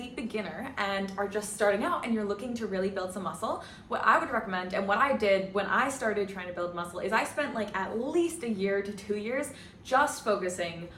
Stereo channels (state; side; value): identical; both; correlation 1.00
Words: beginner and are just starting out and you're looking to really build some muscle, what I would recommend and what I did when I started trying to build muscle is I spent like at least a year to 2 years just focusing